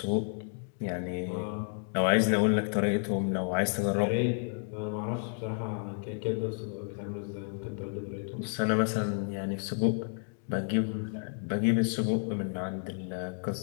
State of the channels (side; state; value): right; silent; 57 dB below the other